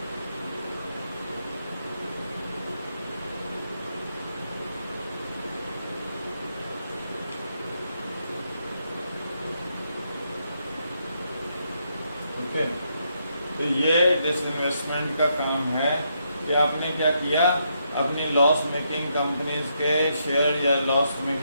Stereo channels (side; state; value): both; inverted; correlation -0.78